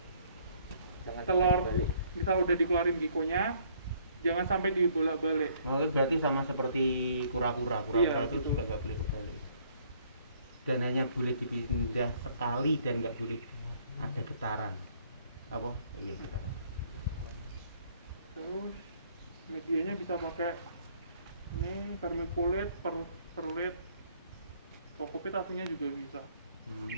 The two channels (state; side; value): inverted; both; correlation -0.63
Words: Jangan telur balik. misal udah dikeluarin gikonya, jangan sampai dibolak-balik. Oh, berarti sama seperti kura-kura. Kura-kura Iya, itu gitu. juga nggak boleh kebalik. Dan hanya boleh dipindah sekali dan nggak boleh ada getaran. Apa? Iya, getaran. Terus medianya bisa pakai ini vermiculit, perlit, kokopit aslinya juga bisa. Ini